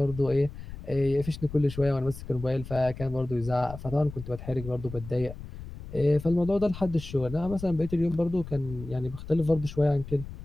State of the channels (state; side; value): noise; left; rumble, 12 dB below the sound